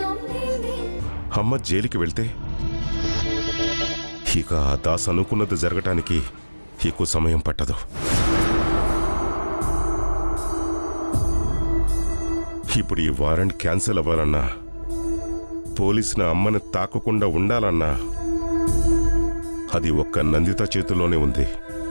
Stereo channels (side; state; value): both; inverted; correlation -1.00